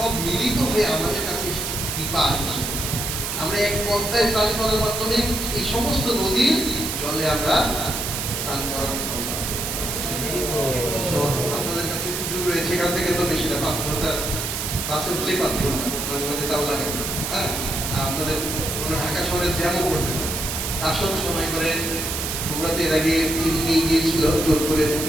মিলিত হয়ে আমাদের কাছে এসেছে কৃপা। আমরা এক পদ্মায় স্নান করার মাধ্যমে এই সমস্ত নদীর জলে আমরা স্নান করার করলাম। তো আপনাদের কাছে সুযোগ রয়েছে, এখান থেকে তো বেশি না, 5 ঘন্টা, বাসে উঠলেই 5 ঘন্টা, মাঝে মাঝে তাও লাগে। হ্যাঁ, আপনাদের কোনো ঢাকা শহরে জ্যামও করতে আসন সময় করে বগুড়াতে এর আগে নিয়ে গিয়েছিল, জোর করে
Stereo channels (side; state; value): right; noise; hiss, 3 dB below the sound